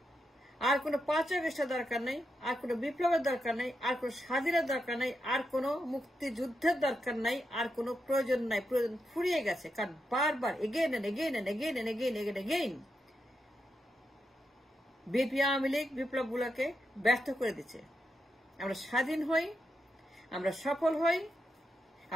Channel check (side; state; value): both; normal; correlation 0.85